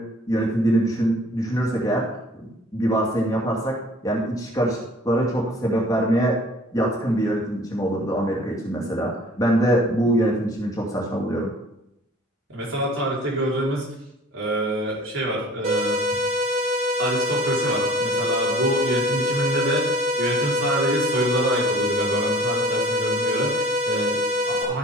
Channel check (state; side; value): normal; both; correlation 0.49